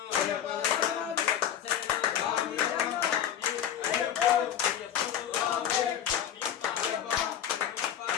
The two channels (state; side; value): quieter; right; 9.9 dB